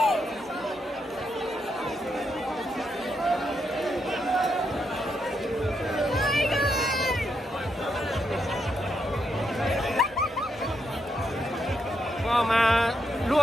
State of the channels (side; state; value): both; normal; correlation 0.80